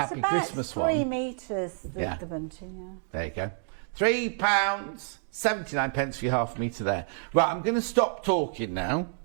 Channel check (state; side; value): silent; left; digital silence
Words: Christmas one. 3 metres, the bunting, yeah. There you go. £3.79 for your 1/2 metre there. Right, I'm going to stop talking now